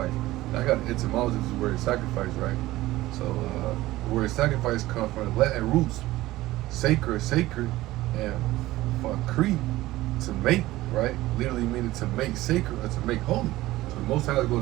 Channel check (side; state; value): left; quieter; 17.1 dB